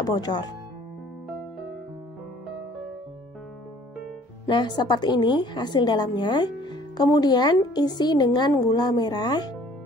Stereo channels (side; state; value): both; normal; correlation 0.55